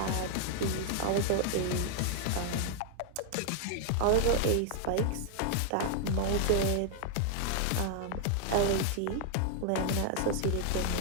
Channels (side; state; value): both; different; correlation 0.00